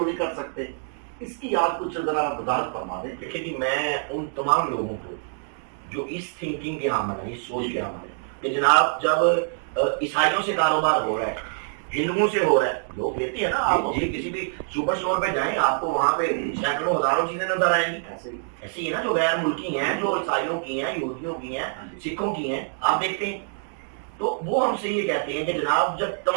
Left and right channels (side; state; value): left; silent; digital silence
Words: نہیں کر سکتے؟ اس کی آج کچھ ذرا وضاحت فرما دیں. دیکھیں جی، میں ان تمام لوگوں کو جو اس تھنکنگ کے حامل ہیں، اس سوچ کے حامل ہیں کہ جناب جب عیسائیوں سے کاروبار ہو رہا ہے، ہندوؤں سے ہو رہا ہے، لوگ لیتے ہیں نا. آپ کسی بھی سپر سٹور پہ جائیں، آپ کو وہاں پہ سینکڑوں ہزاروں چیزیں نظر آئیں گی. ایسے ہی نا جو غیر ملکی ہیں، جو عیسائیوں کی ہیں، یہودیوں کی ہیں، سکھوں کی ہیں، آپ دیکھتے ہیں. تو وہ ہم سے یہ کہتے ہیں کہ جناب جب